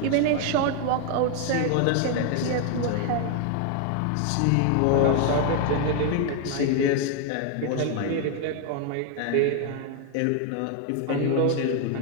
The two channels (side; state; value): both; different; correlation 0.01